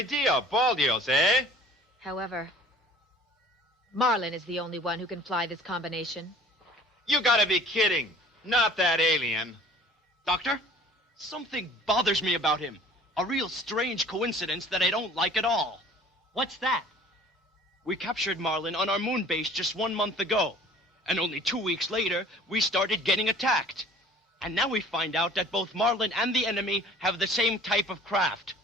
Baldios, eh? However, Marlin is the only one who can fly this combination. You gotta be kidding. Not that alien. Doctor, something bothers me about him. A real strange coincidence that I don't like at all. What's that? We captured Marlin on our moon base just 1 month ago. And only 2 weeks later, we started getting attacked. And now we find out that both Marlin and the enemy have the same type of craft.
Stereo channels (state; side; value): normal; both; correlation 0.49